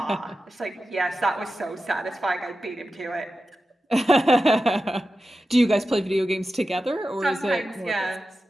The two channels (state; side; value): normal; both; correlation 0.92